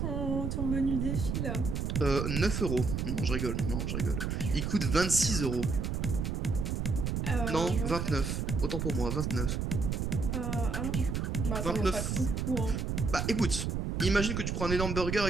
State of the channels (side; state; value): right; noise; rumble, 1 dB below the sound